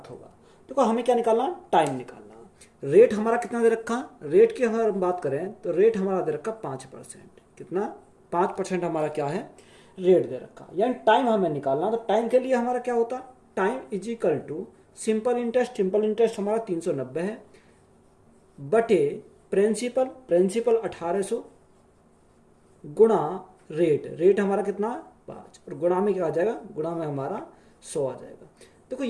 होगा। देखो हमें क्या निकालना, टाइम निकालना। रेट हमारा कितना दे रखा, रेट की अगर हम बात करें तो रेट हमारा दे रखा 5%। कितना, 5% हमारा क्या है, रेट दे रखा। यानी टाइम हमें निकालना। तो टाइम के लिए हमारा क्या होता, time is equal to simple interest. Simple interest हमारा 390 है बटे प्रिंसिपल, प्रिंसिपल 1800 गुणा रेट, रेट हमारा कितना 5, और गुणा में क्या आ जाएगा, गुणा में हमारा 100 आ जाएगा। देखो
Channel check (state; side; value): identical; both; correlation 1.00